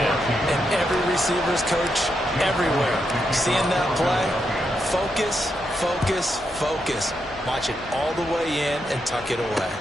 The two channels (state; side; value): normal; both; correlation 0.82